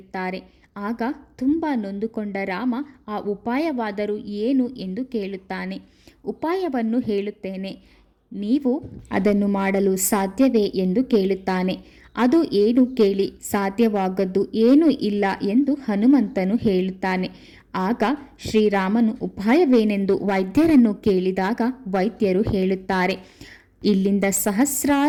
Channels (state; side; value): identical; both; correlation 1.00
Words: ಆಗ ತುಂಬ ನೊಂದುಕೊಂಡ ರಾಮ ಆ ಉಪಾಯವಾದರೂ ಏನು ಎಂದು ಕೇಳುತ್ತಾನೆ. ಉಪಾಯವನ್ನು ಹೇಳುತ್ತೇನೆ, ನೀವು ಅದನ್ನು ಮಾಡಲು ಸಾಧ್ಯವೇ ಎಂದು ಕೇಳುತ್ತಾನೆ. ಅದು ಏನು ಕೇಳಿ, ಸಾಧ್ಯವಾಗದ್ದು ಏನೂ ಇಲ್ಲ ಎಂದು ಹನುಮಂತನು ಹೇಳುತ್ತಾನೆ. ಆಗ ಶ್ರೀರಾಮನು ಉಪಾಯವೇನೆಂದು ವೈದ್ಯರನ್ನು ಕೇಳಿದಾಗ ವೈದ್ಯರು ಹೇಳುತ್ತಾರೆ, ಇಲ್ಲಿಂದ